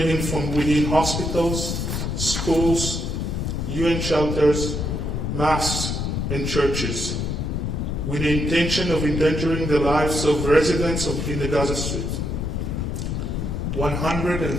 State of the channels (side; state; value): left; noise; rumble, 2 dB below the sound